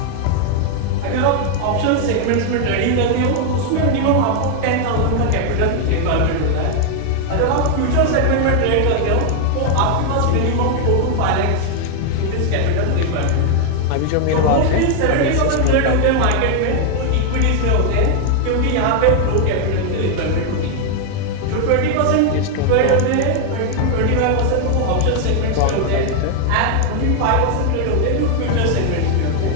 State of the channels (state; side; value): different; both; correlation 0.00